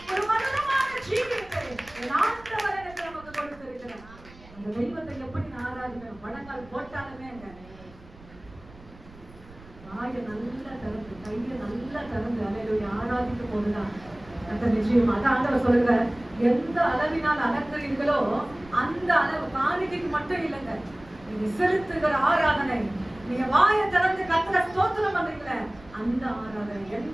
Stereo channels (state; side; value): noise; right; rumble, 21 dB below the sound